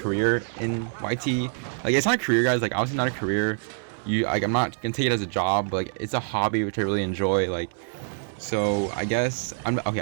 in YT. Like it's not a career, guys, like obviously not a career. I'm not gonna take it as a job, but like it's a hobby which I really enjoy. Like so I guess I'm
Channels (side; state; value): left; silent; digital silence